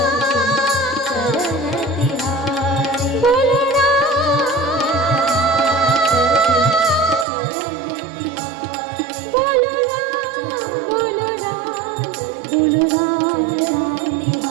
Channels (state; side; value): drops out; left; at 7.2 s